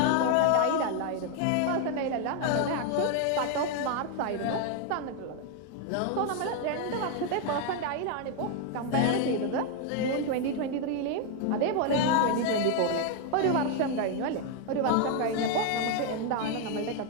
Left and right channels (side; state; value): both; different; correlation 0.00